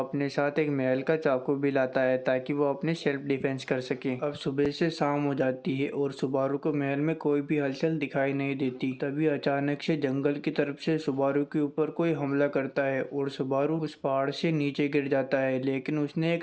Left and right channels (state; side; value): identical; both; correlation 1.00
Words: साथ एक महल का चाकू भी लाता है ताकि वो अपने सेल्फ डिफेंस कर सके। अब सुबह से शाम हो जाती है और सुबारू को महल में कोई भी हलचल दिखाई नहीं देती। तभी अचानक से जंगल की तरफ से सुबारू के ऊपर कोई हमला करता है और सुबारू उस पहाड़ से नीचे गिर जाता है, लेकिन उसने